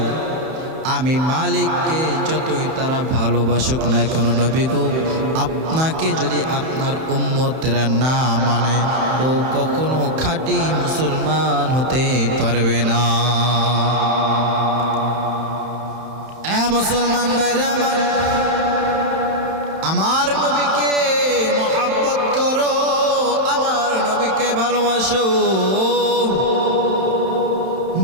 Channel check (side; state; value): left; late; 31 ms